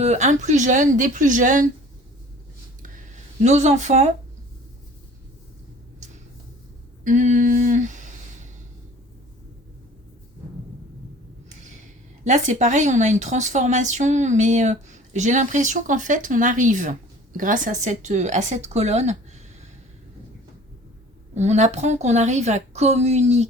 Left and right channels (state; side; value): normal; both; correlation 0.47